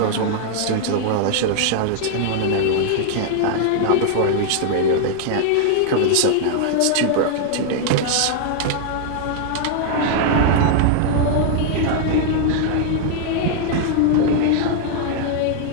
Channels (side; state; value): both; different; correlation 0.00